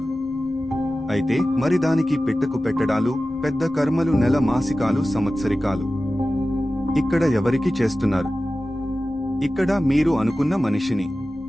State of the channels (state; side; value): normal; both; correlation 0.95